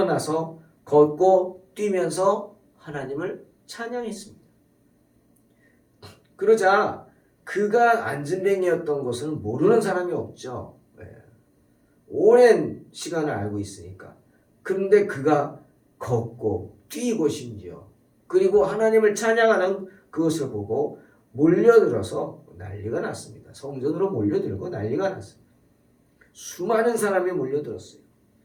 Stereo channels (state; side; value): identical; both; correlation 1.00